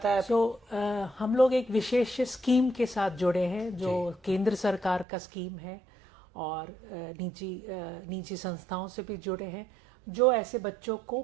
है? हम लोग एक विशेष स्कीम के साथ जुड़े हैं, जो केंद्र सरकार का स्कीम है, और निजी संस्थाओं से भी जुड़े हैं जो ऐसे बच्चों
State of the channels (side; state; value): left; drops out; at 5.1 s